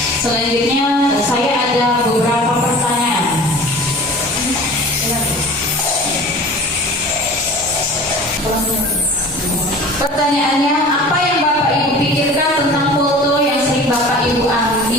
Selanjutnya saya ada beberapa pertanyaan. Pertanyaannya, apa yang Bapak Ibu pikirkan tentang foto yang sering Bapak Ibu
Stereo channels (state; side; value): normal; both; correlation 0.41